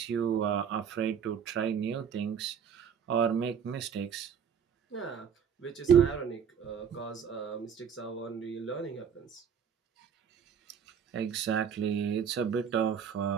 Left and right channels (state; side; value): quieter; left; 7.5 dB